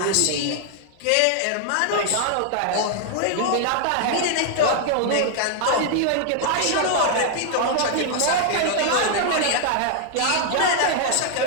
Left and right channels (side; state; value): both; different; correlation 0.00